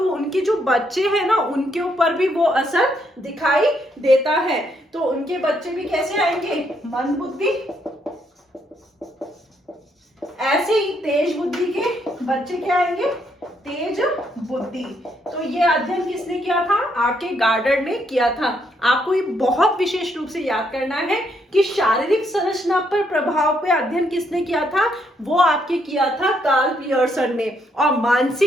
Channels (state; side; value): normal; both; correlation 0.74